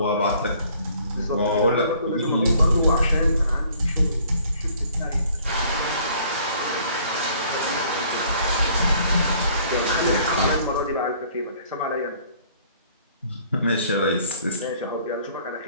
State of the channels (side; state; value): both; inverted; correlation -0.57